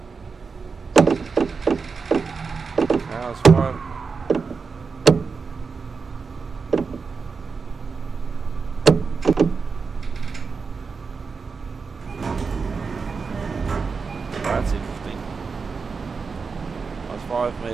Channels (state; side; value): quieter; left; 5.0 dB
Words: was 5. That's interesting. I was 5